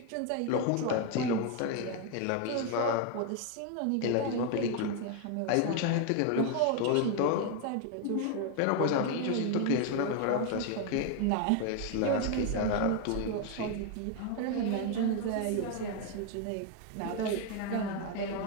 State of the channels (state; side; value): different; both; correlation 0.01